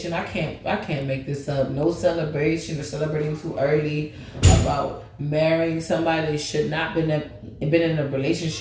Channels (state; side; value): identical; both; correlation 1.00